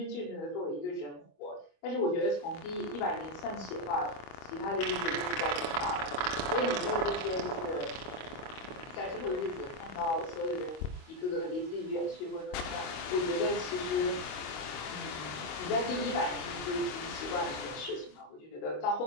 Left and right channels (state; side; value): late; right; 26 ms